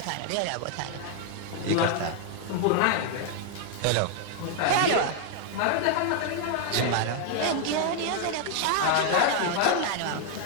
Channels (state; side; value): different; both; correlation 0.00